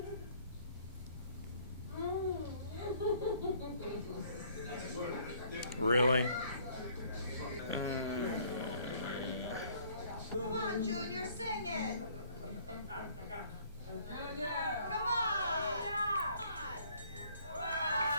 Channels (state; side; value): inverted; both; correlation -0.59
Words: Really? Come on, Junior, sing it. Come on.